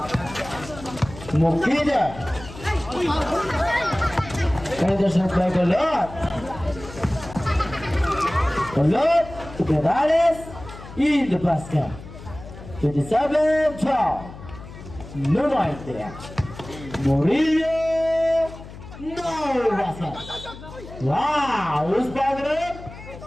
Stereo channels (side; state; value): left; noise; hum, 15 dB below the sound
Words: Mukide. Henderson by Golor. Golor to Perales in the basket. 27-12. No right there. Murillo. No basket. Wow, who's back up?